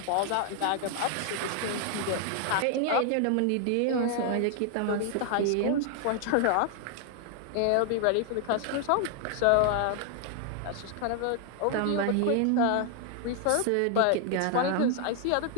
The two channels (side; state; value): both; different; correlation 0.00